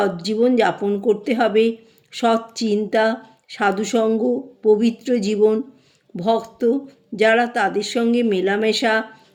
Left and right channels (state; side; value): identical; both; correlation 1.00